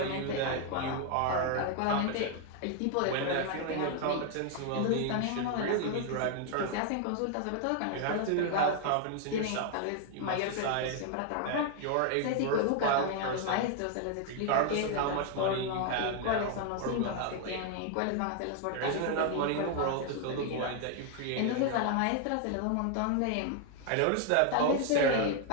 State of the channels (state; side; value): different; both; correlation 0.00